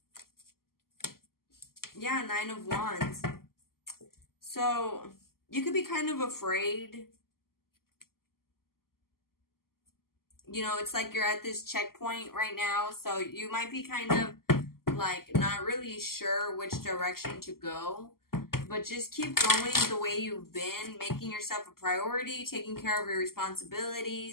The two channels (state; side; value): late; right; 0.92 ms